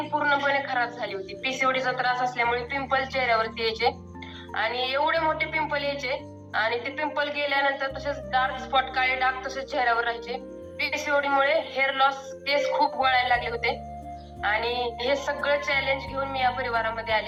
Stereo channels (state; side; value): identical; both; correlation 1.00